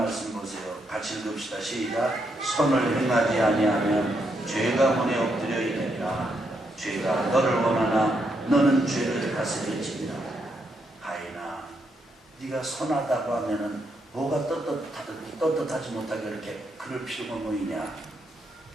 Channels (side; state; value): both; normal; correlation 0.78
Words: 보세요. 같이 읽읍시다. 시작. 선을 행하지 아니하면 죄가 문에 엎드려 있느니라. 죄가 너를 원하나 너는 죄를 다스릴지니라. 가인아, 네가 선하다고 하면은 뭐가 떳떳하지 못하게 이렇게 그럴 필요가 뭐 있냐.